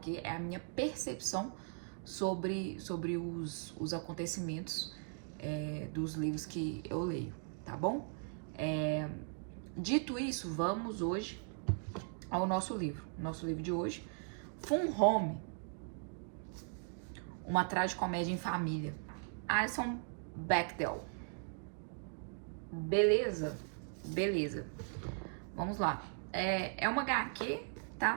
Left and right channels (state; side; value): silent; left; 52 dB below the other